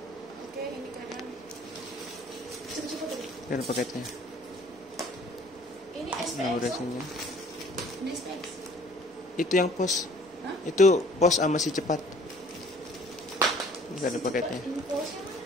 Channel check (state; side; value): normal; both; correlation 0.54